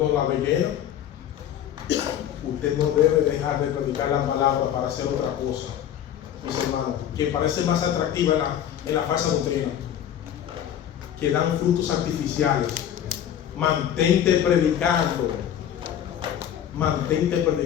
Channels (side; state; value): right; quieter; 10.3 dB